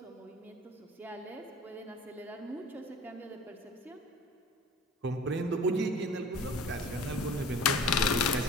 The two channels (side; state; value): both; normal; correlation 0.43